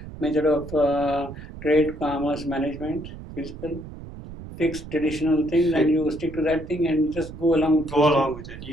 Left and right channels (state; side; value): noise; right; rumble, 13 dB below the sound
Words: method of trade, commerce, management, physical, fixed traditional things, and you stick to that thing and just go along with Go along with it.